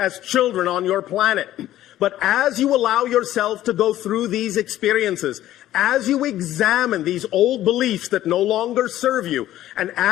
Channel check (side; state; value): right; quieter; 13.6 dB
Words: children on your planet. But as you allow yourself to go through these experiences, as you examine these old beliefs that no longer serve you, and